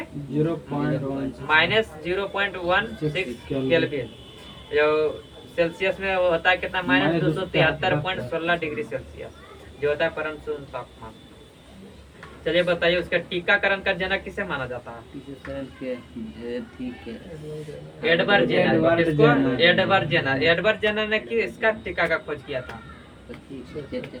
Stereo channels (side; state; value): both; identical; correlation 1.00